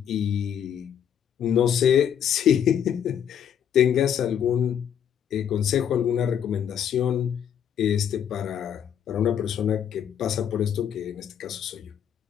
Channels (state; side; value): quieter; right; 8.9 dB